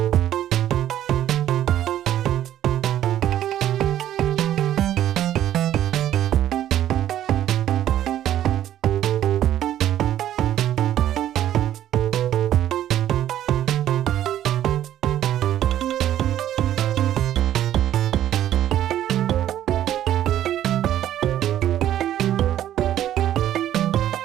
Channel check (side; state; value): left; quieter; 11.8 dB